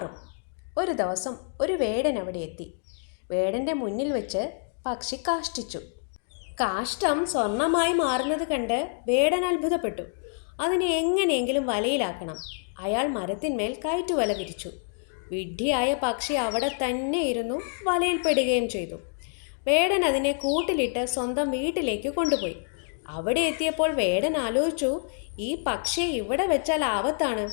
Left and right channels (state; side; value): silent; right; 60 dB below the other